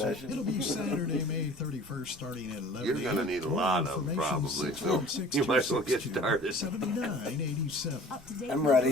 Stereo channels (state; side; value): normal; both; correlation 0.47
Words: It'll be Saturday, May 31st, starting at 11 You're gonna need a More lot of 'em, information, probably, so 616 you might as well get 262 started. 7987. I'm